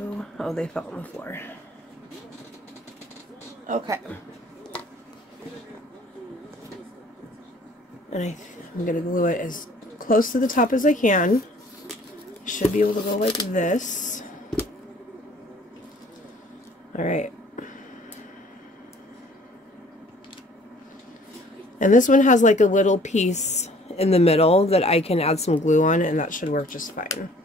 Oh, they fell on the floor. Okay. And I'm going to glue it as close to the top as I can. Should be able to go like this. Alright. And this one has like a little piece in the middle that I can add some glue on, and that should work just fine.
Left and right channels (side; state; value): both; normal; correlation 0.55